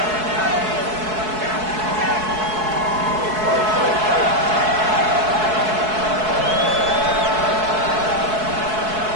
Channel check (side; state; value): left; late; 4.6 ms